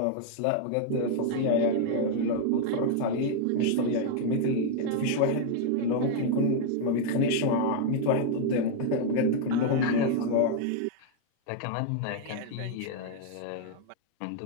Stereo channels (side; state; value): both; different; correlation 0.00